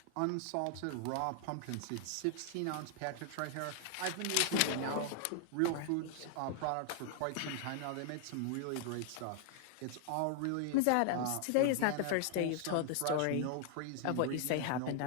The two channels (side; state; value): both; different; correlation 0.00